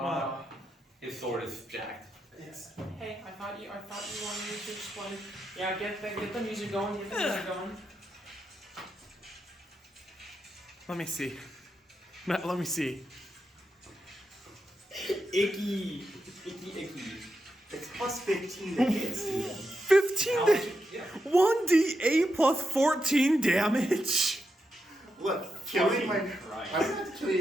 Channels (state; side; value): normal; both; correlation 0.86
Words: His sword is jacked. Yes. Hey, I thought you wanted me to explain. Yeah, get the music going. Get the music going. Let me see. Matt, let me see. Icky. It's plus 15 to hit, Steven. 15 1d8 plus 14 damage. Look, killing my... Right. I'm gonna have to kill